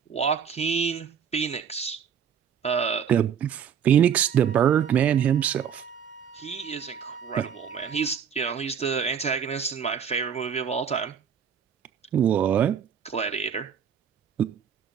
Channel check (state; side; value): quieter; left; 7.8 dB